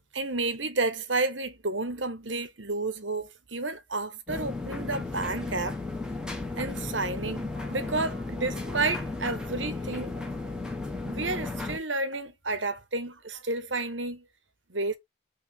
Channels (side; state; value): both; normal; correlation -0.06